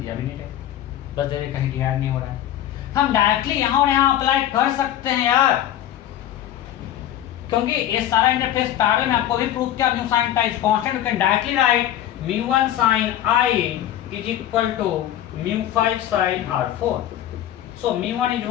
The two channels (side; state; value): right; quieter; 12.0 dB